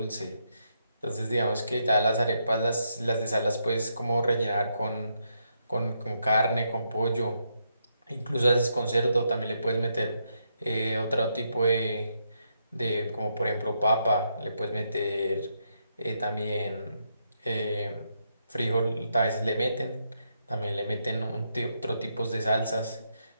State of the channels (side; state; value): both; inverted; correlation -0.79